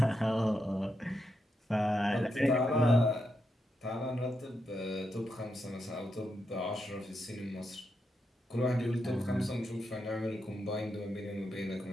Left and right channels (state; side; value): normal; both; correlation 0.83